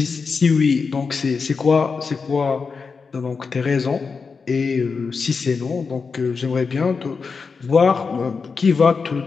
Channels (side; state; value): right; quieter; 5.0 dB